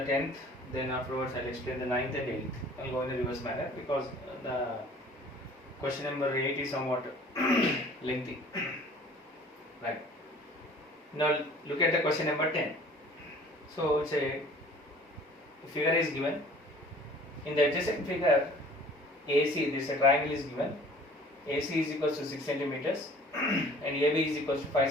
10th, then afterwards I'll explain the 9th and 8th. I'll go in a reverse manner because the question number 8 is somewhat lengthy. Right. Now look at the question number 10. So it's a figure is given. In the adjacent figure, AC, this triangle is given. AC is equals to 6 centimeters and AB is equals to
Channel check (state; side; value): normal; both; correlation 0.49